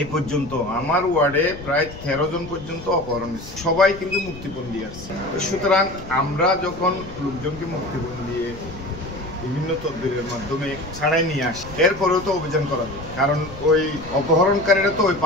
এই পর্যন্ত আমার ওয়ার্ডে প্রায় 13 জন পর্যন্ত অপহরণ হয়েছে, সবাই কিন্তু মুক্তিপণ দিয়ে আসছে। সুতরাং আমরা যখন লোকজনকে মুক্তিপণ দিয়ে বিভিন্ন তদবিরের মাধ্যমে ছাড়াই নিয়ে আসি, এরপরেও তো অভিযান করা যায়, কারণ ওই অপহরণকারীরা তো ওই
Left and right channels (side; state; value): left; noise; rumble, 15 dB below the sound